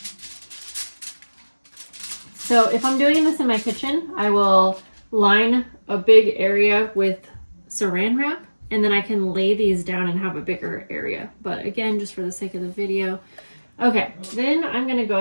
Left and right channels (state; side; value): inverted; both; correlation -1.00